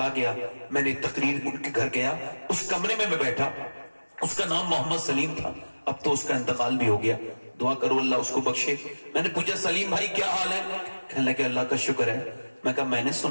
گیا، میں نے تقریر ان کے گھر گیا، اس کمرے میں بیٹھا. اس کا نام محمد سلیم تھا، اب تو اس کا انتقال بھی ہو گیا، دعا کرو اللہ اس کو بخشے. میں نے پوچھا سلیم بھائی کیا حال ہے؟ کہنے لگے اللہ کا شکر ہے. میں کہا میں نے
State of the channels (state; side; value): inverted; both; correlation -1.00